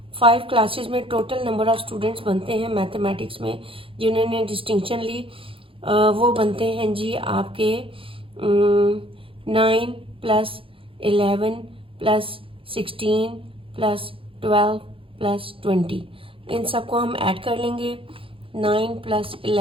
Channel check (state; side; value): late; left; 0.26 ms